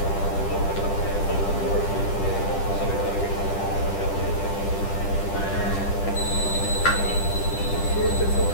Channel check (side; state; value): right; late; 10 ms